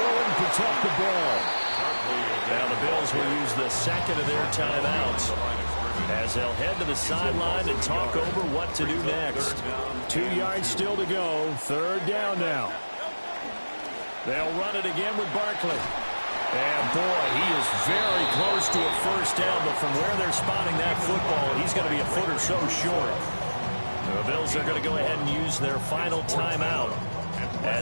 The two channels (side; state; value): both; inverted; correlation -1.00